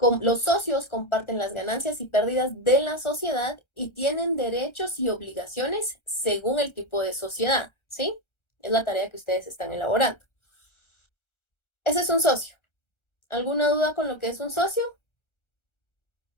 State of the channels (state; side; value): late; right; 1.3 ms